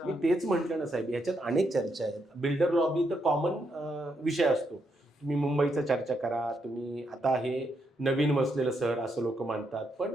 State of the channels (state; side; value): normal; both; correlation 0.79